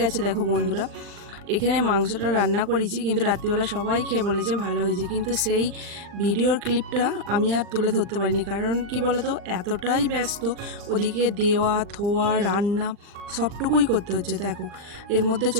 দেখো বন্ধুরা, এখানে মাংসটা রান্না করেছি, কিন্তু রাত্রিবেলা সবাই খেয়ে বলেছে ভালো হয়েছে, কিন্তু সেই ভিডিওর ক্লিপটা আমি আর তুলে ধরতে পারিনি। কারণ কি বলতো, এতটাই ব্যস্ত, ওদিকে দেওয়া থোয়া রান্না সবটুকুই করতে হচ্ছে। দেখো এর মধ্যে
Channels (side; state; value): left; late; 39 ms